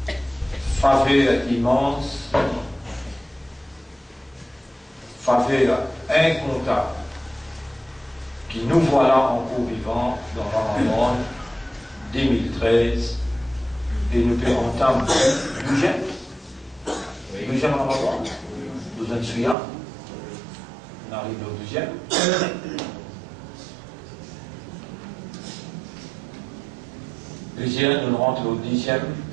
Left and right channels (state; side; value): drops out; left; at 19.6 s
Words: faveur immense, faveur incontable, qui nous voilà encore vivants dans Ramadan 2013 et nous pouvons entendre le deuxième Ramadan, nous en souvenons, on arrive au deuxième. Deuxième, nous rentrons au 10e